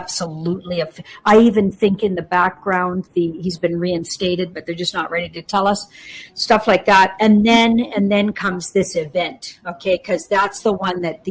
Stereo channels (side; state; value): both; identical; correlation 1.00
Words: I even think in the background he's been reinstated, but they're just not ready to tell us stuff like that. And then comes this event, okay? Because that's the one that the